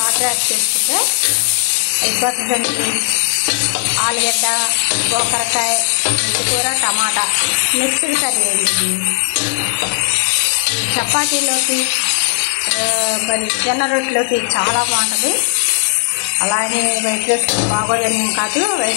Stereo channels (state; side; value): silent; right; digital silence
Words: యాడ్ చేసుకుంటే అయిపోతుందండి. ఆలుగడ్డ, గోకరకాయ, మెంతికూర, టమాటా మిక్స్డ్ కర్రీ అండి. చపాతీలోకి మరి జొన్న రొట్టెలోకి చాలా బాగుంటుంది. అలాగే వైట్ రైస్ బాగోదని కాదు,